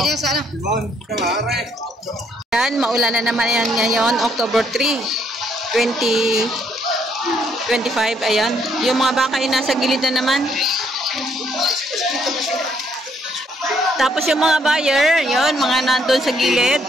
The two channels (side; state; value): both; normal; correlation 0.69